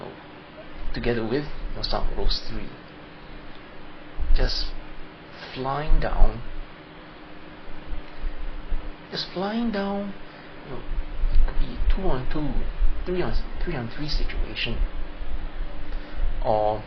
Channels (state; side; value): identical; both; correlation 1.00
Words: together with some of those three, just flying down, it could be 2-on-2, 3-on-3 situation, or